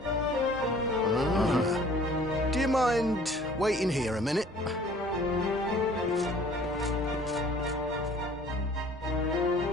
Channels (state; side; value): normal; both; correlation 0.52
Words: Do you mind waiting here a minute?